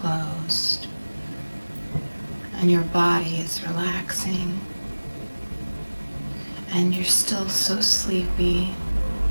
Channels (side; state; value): both; inverted; correlation -1.00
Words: and your body is relaxing, and you're still so sleepy,